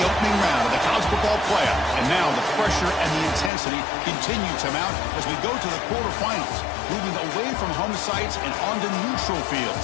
opening round of the college football playoff, and now the pressure and the intensity continue to mount as we go to the quarterfinals, moving away from home sites and onto neutral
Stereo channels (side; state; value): right; drops out; at 3.5 s